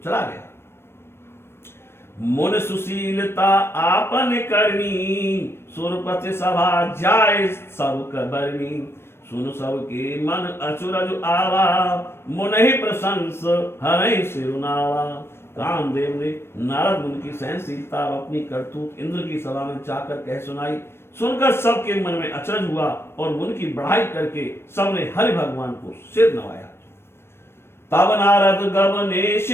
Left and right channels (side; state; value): right; late; 0.12 ms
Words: चला गया। मुन सुशीलता आपन करनी, सुरपति सभा जाय सब कबरनी। सुन सब के मन अचुरज आवा, मुनहि प्रशंस हरहि सिरुनावा। कामदेव ने नारद मुनि की सहनशीलता और अपनी करतूत इंद्र की सभा में जाकर कह सुनाई। सुनकर सबके मन में अचरज हुआ और मुनि की बढ़ाई करके सबने हरि भगवान को सिर नवाया। तब नारद गवने